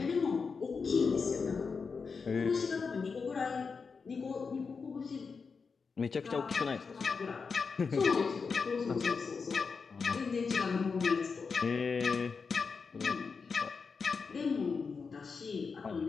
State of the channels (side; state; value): right; quieter; 5.2 dB